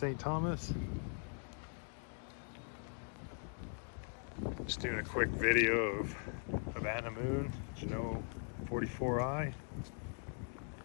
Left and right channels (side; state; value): right; silent; 51 dB below the other